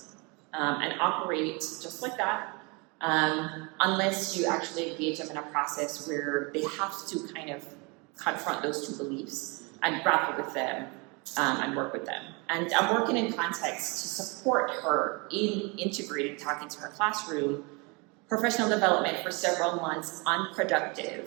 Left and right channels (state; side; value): quieter; left; 29.5 dB